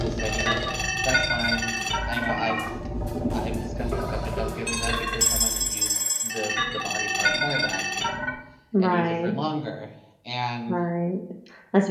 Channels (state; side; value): identical; both; correlation 1.00